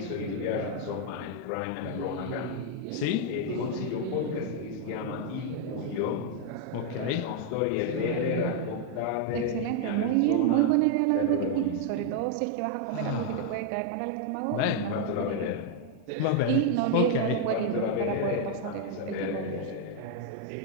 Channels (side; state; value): both; different; correlation 0.00